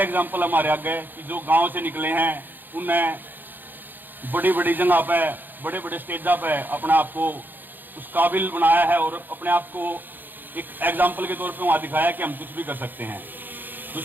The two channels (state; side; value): late; left; 0.090 ms